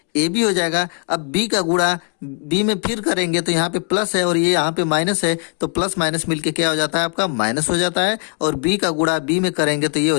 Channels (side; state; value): right; quieter; 37.9 dB